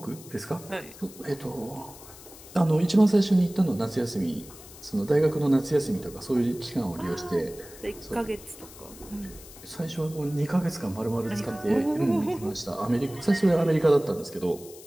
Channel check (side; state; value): left; noise; hiss, 18 dB below the sound